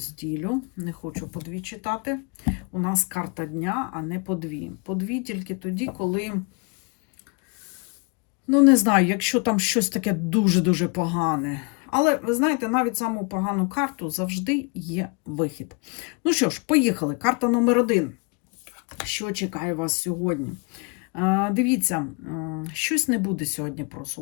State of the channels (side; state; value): right; quieter; 32.9 dB